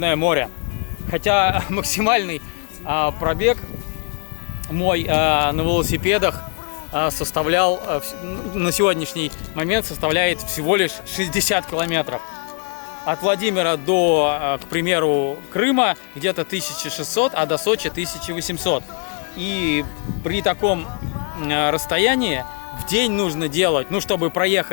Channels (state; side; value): quieter; right; 39.8 dB